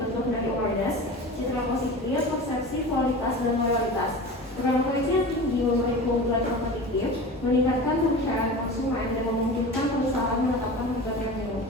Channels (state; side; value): normal; both; correlation 0.33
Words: dari awareness, citra positif, persepsi, kualitas, dan loyalitas. Brand equity yang tinggi memberi keunggulan kompetitif, meningkatkan kepercayaan konsumen, dan memungkinkan perusahaan menetapkan harga premium.